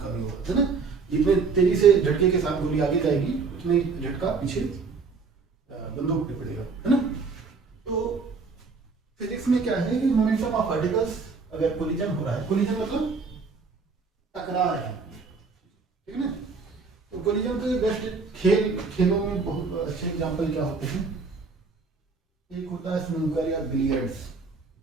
का भी होगा, है ना? जितने तेजी से झटके के साथ गोली आगे जाएगी उतने झटका पीछे बंदूक पे पड़ेगा, है ना? तो फिजिक्स में क्या है कि मोमेंटम ऑफ पार्टिकल्स अगर कोलिजन हो रहा है, कोलिजन मतलब टकरा रहे हैं, ठीक है ना? तो कोलिजन के बेस्ट खेलों में बहुत अच्छे एग्जांपल क्या होते हैं? एक होता है स्नूकर या बिलियर्ड्स,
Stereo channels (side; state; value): left; quieter; 4.7 dB